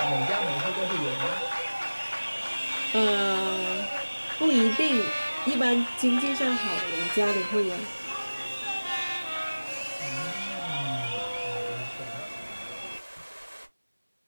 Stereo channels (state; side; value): inverted; both; correlation -1.00